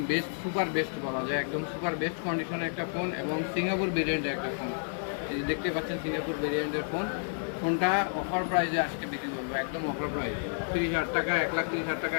বেস্ট, সুপার বেস্ট বলা যায়। একদম সুপার বেস্ট কন্ডিশনের একটা ফোন এবং সিঙ্গাপুর ভেরিয়েন্টের একটা ফোন। এই যে দেখতে পাচ্ছেন সিঙ্গাপুর ভেরিয়েন্টের ফোনটা অফার প্রাইসে আজকে বিক্রি করবো, একদম অফার প্রাইস 30,000 টাকা, 1,30,000 টাকা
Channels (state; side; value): silent; right; digital silence